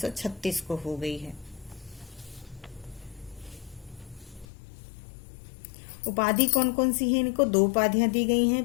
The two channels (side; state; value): right; drops out; at 4.5 s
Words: को हो गई है। उपाधि कौन कौन सी है इनको? 2 उपाधियां दी गई